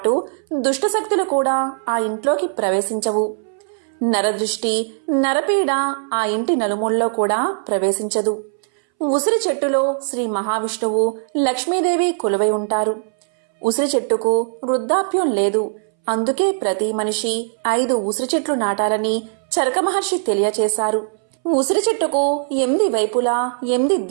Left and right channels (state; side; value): silent; left; 64 dB below the other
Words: దుష్టశక్తులు కూడా ఆ ఇంట్లోకి ప్రవేశించవు. నరదృష్టి, నరపీడ ఆ ఇంటి నలుమూలలో కూడా ప్రవేశించదు. ఉసిరి చెట్టులో శ్రీ మహావిష్ణువు, లక్ష్మీదేవి కొలువై ఉంటారు. ఉసిరి చెట్టుకు వృద్ధాప్యం లేదు. అందుకే ప్రతి మనిషి 5 ఉసిరి చెట్లు నాటాలని చరక మహర్షి తెలియచేశారు. ఉసిరి చెట్టుకు 8 వైపులా 8